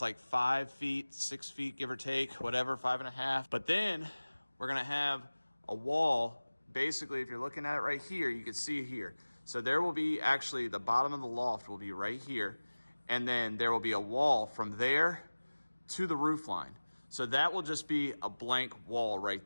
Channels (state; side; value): inverted; both; correlation -1.00